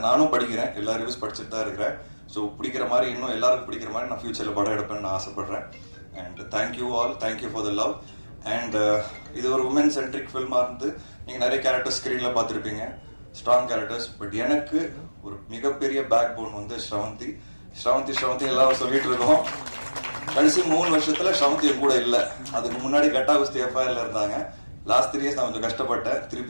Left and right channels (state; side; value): inverted; both; correlation -1.00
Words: நானும் படிக்கிறேன், எல்லா ரிவ்யூஸ் படிச்சுட்டு தான் இருக்கிறேன். ஸோ பிடிக்கிற மாதிரி இன்னும் எல்லாருக்கும் பிடிக்கிற மாதிரி நான் ஃபியூச்சர்ல படம் எடுப்பேன்னு நான் ஆசைப்படுறேன். And thank you all, thank you for the love. And இது ஒரு உமன் சென்ட்ரிக் ஃபில்மா இருந்து நீங்க நிறைய கேரக்டர்ஸ் ஸ்கிரீன்ல பார்த்துருப்பீங்க, ஸ்ட்ராங் கேரக்டர்ஸ். பட் எனக்கு ஒரு மிகப்பெரிய பேக் போன் வந்து ஸ்ரவந்தி. எல்லாரும் சொல்லிட்டு இருக்கோம். கடைசி 3 வருஷத்துல ஸ்ரவந்தி கூட இல்லை. அதுக்கு முன்னாடி கட்டா குஸ்தி எஃப்ஐஆர்ல இருந்தாங்க. லாஸ்ட் 3 இயர்ஸ் நான் கொஞ்சம் கஷ்டப்பட்டேன்.